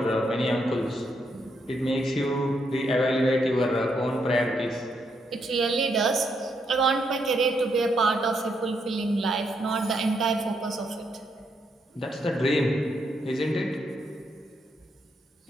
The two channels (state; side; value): normal; both; correlation 0.78